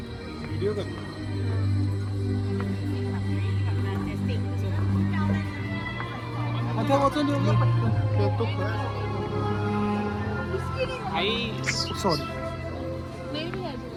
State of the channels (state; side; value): identical; both; correlation 1.00